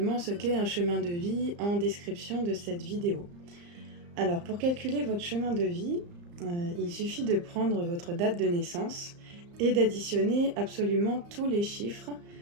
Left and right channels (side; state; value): left; late; 34 ms